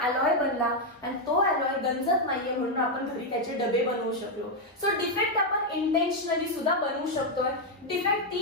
अलॉय बनला आणि तो अलॉय गंजत नाहीये म्हणून आपण घरी त्याचे डबे बनवू शकलो. सो डिफेक्ट आपण इंटेन्शनली सुद्धा बनवू शकतोय. डिफेक्ट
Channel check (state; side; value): normal; both; correlation 0.02